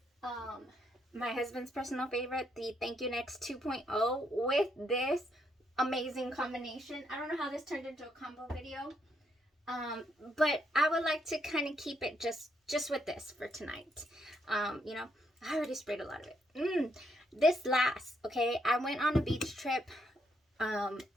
my husband's personal favorite, the Thank You Next 2.0 with this amazing combination. I don't know how this turned into a combo video, but I would like to kind of keep it just with this for tonight. You know, I already sprayed a lot of it. This last, okay, I went on a beach trip,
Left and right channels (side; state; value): both; normal; correlation 0.75